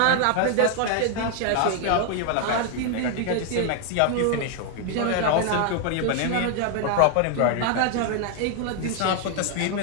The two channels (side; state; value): both; different; correlation 0.00